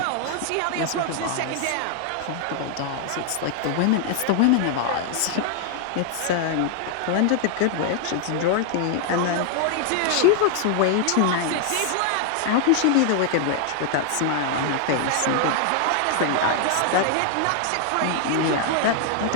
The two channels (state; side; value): different; both; correlation 0.00